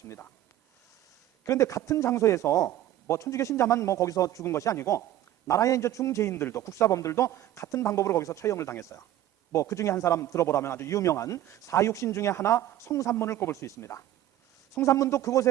그런데 같은 장소에서 뭐 천주교 신자만 뭐 거기서 죽은 것이 아니고 나라의 이제 중죄인들도, 국사범들도 같은 방법으로 거기서 처형을 당했어요. 뭐 그 중에 한 사람 들어보라면 아주 유명한 사육신 중에 하나 성삼문을 꼽을 수 있습니다. 성삼문도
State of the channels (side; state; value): left; quieter; 13.1 dB